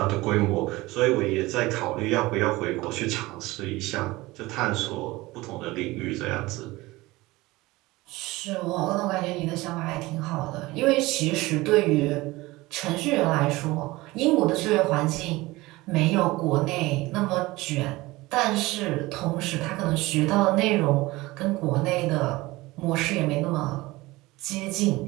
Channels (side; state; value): left; quieter; 20.3 dB